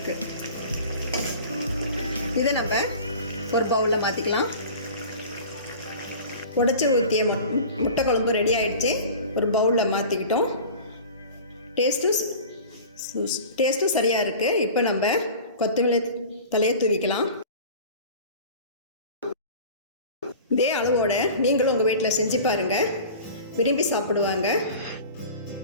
இதை நம்ம ஒரு பவுலில் மாற்றிக்கலாம். உடைச்சி ஊற்றிய முட்டை குழம்பு ரெடி ஆகிடுச்சு. ஒரு பவுலில் மாற்றிக்கிட்டோம். டேஸ்ட்டும் சரியாக இருக்குது. இப்போ நம்ம கொத்தமல்லி தலையை தூவிக்கலாம். இதே அளவோட நீங்களும் உங்கள் வீட்டில் செஞ்சு பாருங்கள், விரும்பி சாப்பிடுவாங்க.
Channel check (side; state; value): both; inverted; correlation -0.39